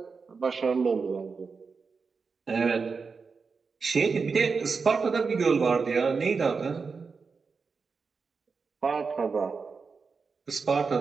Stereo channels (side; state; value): left; quieter; 5.0 dB